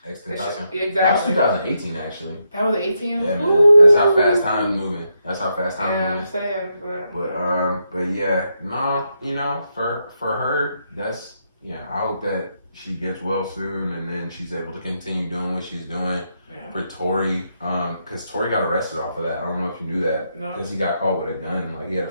Tentacion. Exactly. That was 2018, actually. That was 18? Yeah, man. That's how fast time's moving. Yeah, I'm saying. But yeah, no, for her, that's, I hope that she gets well soon and then she's able to continue doing what she's doing. Yeah. For Tory, because Tory got arrested off of that. I don't know if you knew that. Because he got caught with a gun. Like, he had a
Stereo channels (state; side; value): inverted; both; correlation -0.81